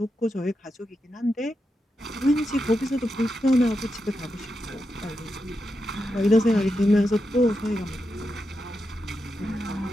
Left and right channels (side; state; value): both; normal; correlation 0.87